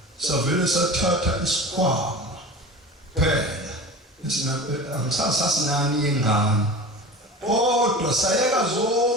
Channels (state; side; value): normal; both; correlation 0.34